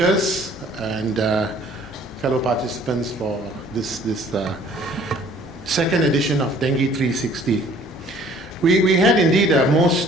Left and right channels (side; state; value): both; normal; correlation 0.55